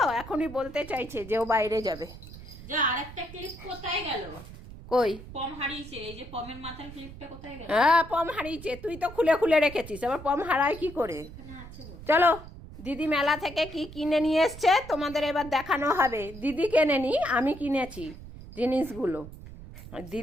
এখনই বলতে চাইছে যে ও বাইরে যাবে। যা আরেকটা ক্লিপ কোথায় গেল? কই? পম হারিয়েছে। এই যে পমের মাথার ক্লিপটা কোথায় গেল? হ্যাঁ পম হারিয়েছে, তুই তো খুলে খুলে রেখেছিস, আবার পম হারায় কি করে? চলো দিদি মেলা থেকে কি কিনে নিয়ে এসছে তোমাদের এবার দেখানো হবে। দিদি কেনেনি, আমি কিনেছি জিনিসগুলো।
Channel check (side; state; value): right; noise; rumble, 15 dB below the sound